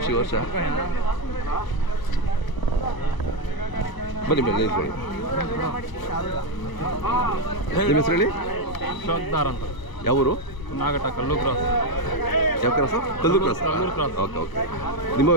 ವರ್ಷ. ಬನ್ನಿ ಬನ್ನಿ ನಿಂತ್ಕೊಳ್ಳಿ. ನಿಮ್ಮ ಹೆಸರು ಹೇಳಿ. ಶೋಕ್ದಾರ್ ಅಂತ. ಯಾವೂರು? ನಾಗಟ, ಕಲ್ಲು ಕ್ರಾಸ್. ಯಾವ cross? Kallur cross. Kallur cross. Okay okay.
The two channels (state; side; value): late; right; 1.0 ms